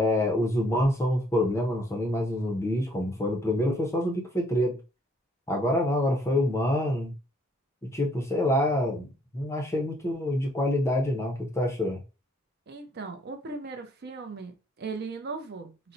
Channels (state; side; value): normal; both; correlation 0.65